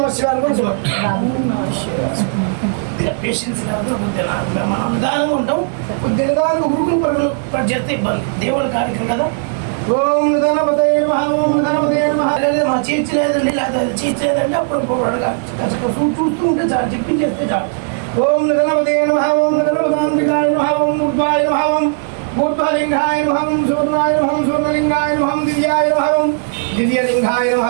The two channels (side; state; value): left; silent; 62 dB below the other